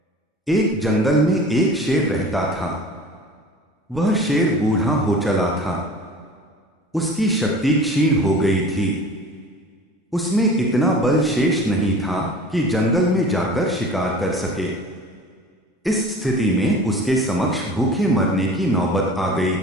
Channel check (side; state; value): both; normal; correlation 0.41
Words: एक जंगल में एक शेर रहता था। वह शेर बूढ़ा हो चला था। उसकी शक्ति क्षीण हो गई थी। उसमें इतना बल शेष नहीं था कि जंगल में जाकर शिकार कर सके। इस स्थिति में उसके समक्ष भूखे मरने की नौबत आ गई